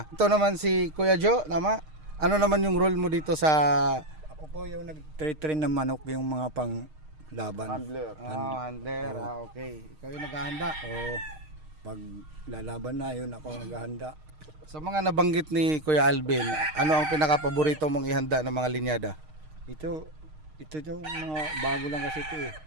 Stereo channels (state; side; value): late; left; 6.5 ms